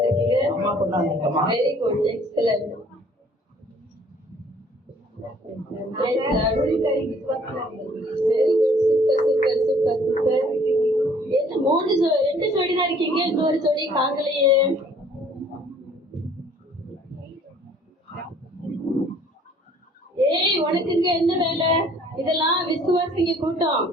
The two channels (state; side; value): normal; both; correlation 0.57